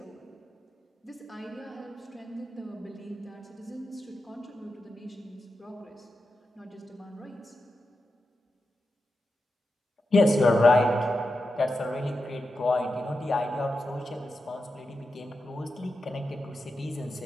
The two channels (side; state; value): both; normal; correlation 0.89